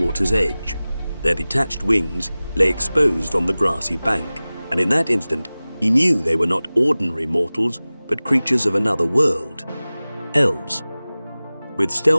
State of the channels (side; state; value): both; inverted; correlation -0.98